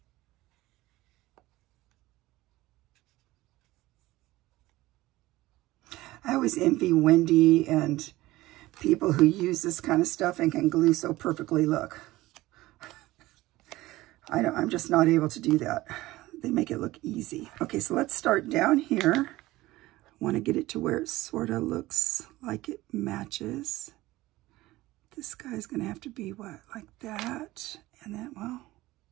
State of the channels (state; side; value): quieter; left; 18.0 dB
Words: I always envy Wendy and people who use this kind of stuff and can glue so perfectly. Look, I'm just not able to do that. They make it look easy. Okay, so let's start down here. I want to get it to where it sort of looks like it matches. This guy's going to have to be what, like that, and then, well,